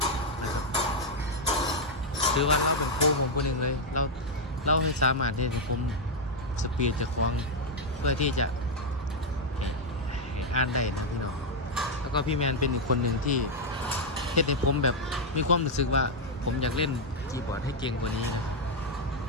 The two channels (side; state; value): both; normal; correlation 0.00